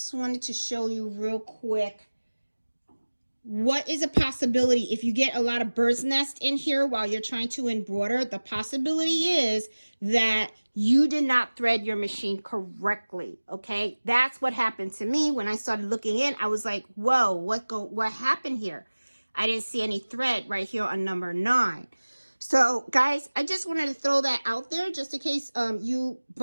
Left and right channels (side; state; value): both; inverted; correlation -1.00